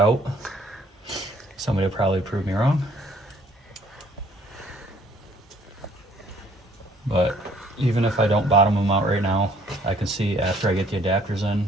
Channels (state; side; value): normal; both; correlation 0.59